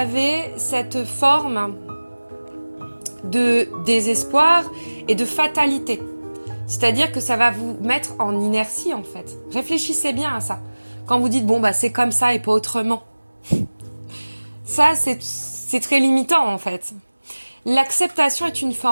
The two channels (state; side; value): inverted; both; correlation -1.00